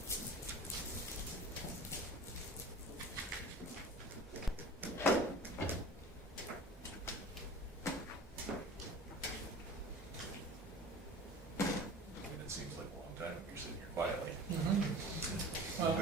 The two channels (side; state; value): both; normal; correlation 0.39